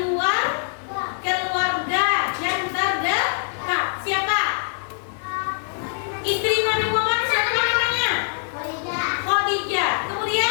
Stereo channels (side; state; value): right; silent; digital silence